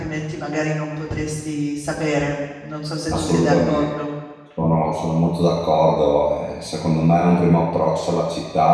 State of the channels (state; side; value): identical; both; correlation 1.00